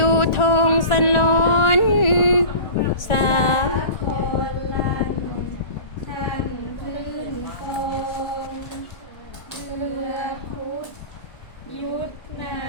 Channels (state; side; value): late; right; 1.4 ms